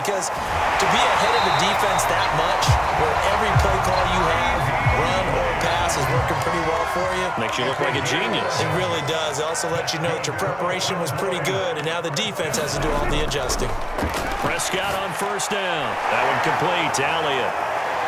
to be ahead of the defense that much, where every play call you have, run or pass, is working pretty well for you. Makes you look like a genius. It really does. It also lets you know that your preparation was pretty good, and now the defense has to do all the adjusting. Prescott on 1st down. That one complete to Elliott.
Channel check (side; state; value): both; identical; correlation 1.00